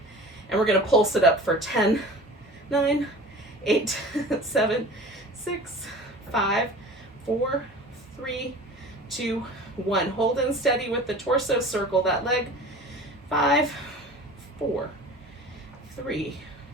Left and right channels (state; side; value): normal; both; correlation 0.40